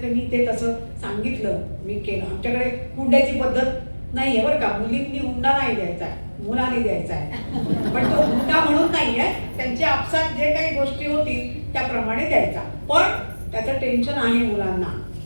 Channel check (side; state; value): both; inverted; correlation -1.00